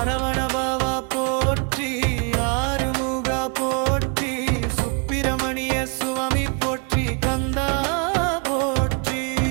போற்றி ஆறுமுக போற்றி சுப்பிரமணிய சுவாமி போற்றி கந்தா போற்றி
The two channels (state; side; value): quieter; left; 35.0 dB